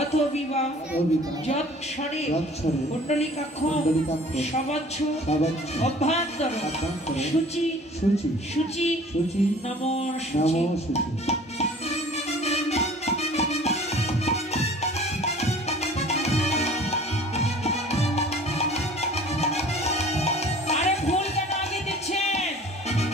বিবাহ অবিবাহ যৎক্ষরে যৎক্ষরে কুণ্ডলিকাক্ষ কুণ্ডলিকাক্ষ সবচ্ছ সবচ্ছ অভ্যন্তর অভ্যন্তর শুচি শুচি শুচি শুচি নমো শুচি। নমো শুচি। আরে ফুল কেন আগে দিচ্ছেন?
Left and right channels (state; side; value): normal; both; correlation 0.48